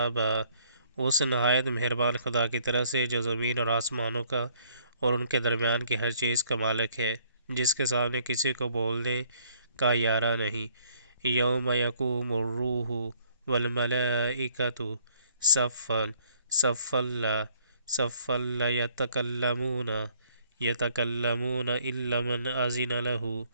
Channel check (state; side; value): inverted; both; correlation -0.63